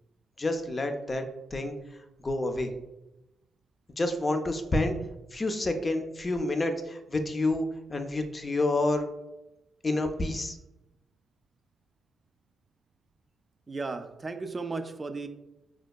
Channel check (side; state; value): both; normal; correlation 0.87